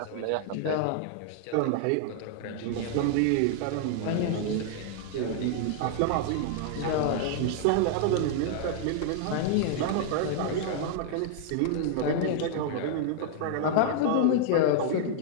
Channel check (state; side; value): different; both; correlation -0.01